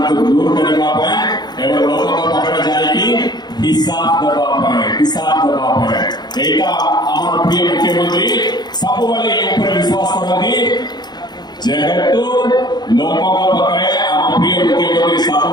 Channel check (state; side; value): late; right; 0.20 ms